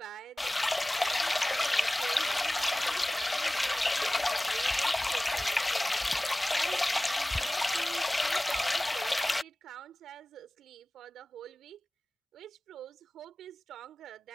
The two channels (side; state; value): both; normal; correlation 0.98